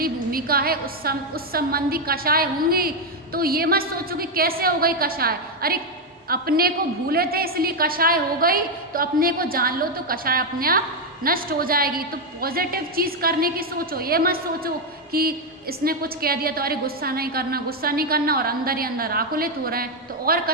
भूमिका है उस संबंधी कषाय होंगी। तो ये मत सोचो कि कैसे हो गई कषाय, अरे अपने को भूले थे इसलिए कषाय हो गई, तो अपने को जान लो तो कषाय अपने आप नष्ट हो जाएगी। तो पॉजिटिव चीज़ करने की सोचो, ये मत सोचो कि इसने कुछ कह दिया तो अरे गुस्सा नहीं करना और अंदर ही अंदर आकुलित हो रहे हैं, तो और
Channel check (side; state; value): both; normal; correlation 0.04